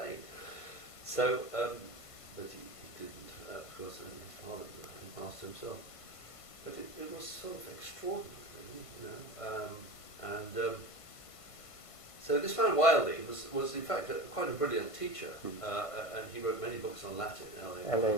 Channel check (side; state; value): right; late; 1.5 ms